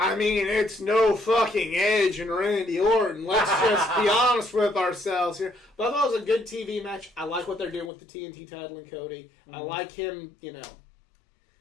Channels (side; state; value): right; drops out; at 7.9 s